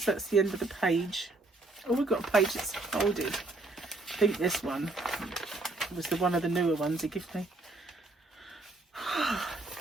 that's the end of the page. Oh, we've got a page that's folded. I think this one was one of the newer ones he gave me.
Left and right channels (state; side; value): quieter; left; 3.0 dB